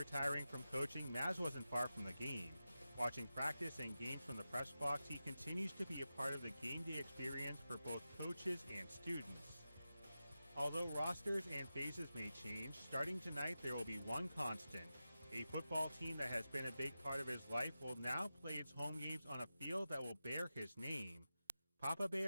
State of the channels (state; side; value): inverted; both; correlation -0.93